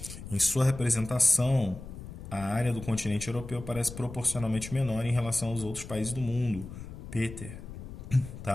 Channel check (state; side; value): noise; left; rumble, 12 dB below the sound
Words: Em sua representação, a área do continente europeu parece proporcionalmente menor em relação aos outros países do mundo. Peter.